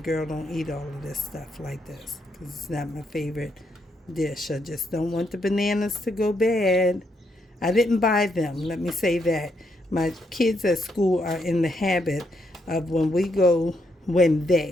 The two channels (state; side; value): normal; both; correlation 0.77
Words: don't eat all of this stuff like this, because it's not my favorite dish. I just don't want the bananas to go bad. I didn't buy them, let me say that. My kids at school are in the habit of when they